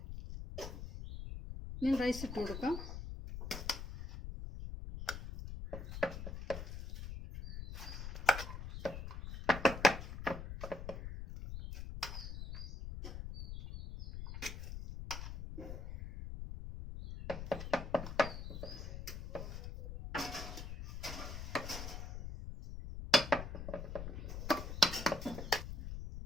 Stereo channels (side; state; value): left; noise; rumble, 7 dB below the sound